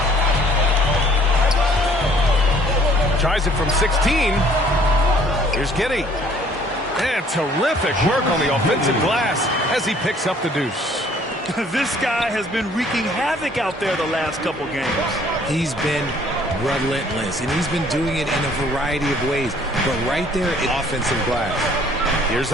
Tries it from 16. Here's Giddy. And terrific work on the offensive glass as he picks up the deuce. This guy has been wreaking havoc out there the last couple games. He's been relentless, and he's been doing it in a variety of ways. But right there, offensive glass. Here's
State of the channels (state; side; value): normal; both; correlation 0.58